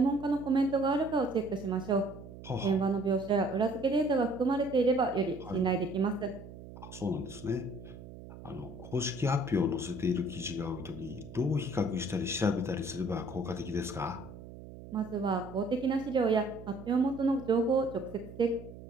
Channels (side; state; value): right; noise; hum, 15 dB below the sound